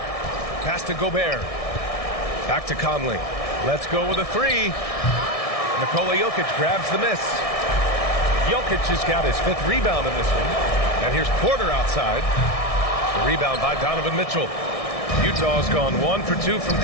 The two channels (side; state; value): right; late; 1.6 ms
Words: Pass to Gobert. Back to Conley. Let's go with a 3. Nikola Jokic grabs the miss. Jokic has got his 5th rebound in this one. And here's Porter outside. The rebound by Donovan Mitchell. Utah's gone 1 for 2 from